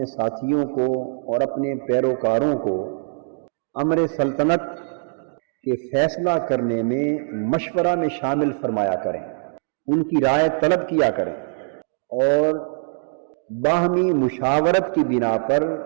ساتھیوں کو اور اپنے پیروکاروں کو امر سلطنت کے فیصلہ کرنے میں، مشورہ میں شامل فرمایا کریں، ان کی رائے طلب کیا کریں، اور باہمی مشاورت کی بنا پر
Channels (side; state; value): left; silent; digital silence